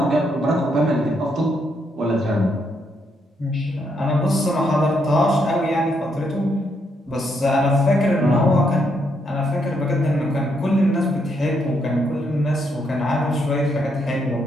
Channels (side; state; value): both; normal; correlation 0.76